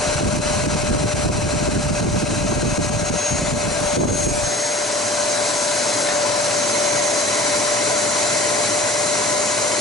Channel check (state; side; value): normal; both; correlation 0.41